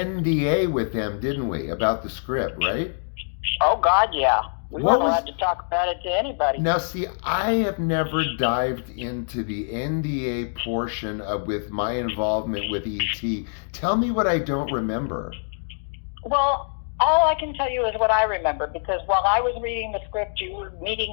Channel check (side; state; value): right; silent; digital silence